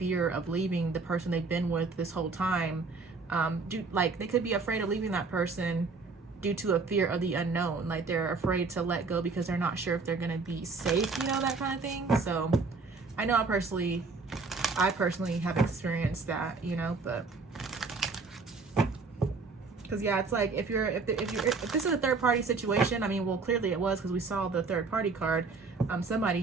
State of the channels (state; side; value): quieter; left; 4.2 dB